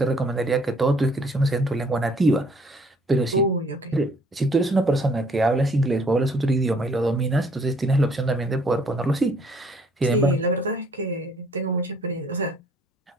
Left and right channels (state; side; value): normal; both; correlation 0.61